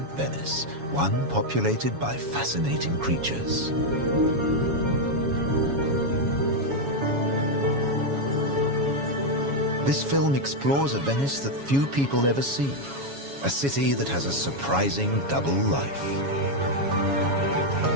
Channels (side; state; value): left; late; 7.2 ms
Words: Venice, one populated by fascinating creatures. This film explores a Venice that few people ever see, a city that has a surprising double life.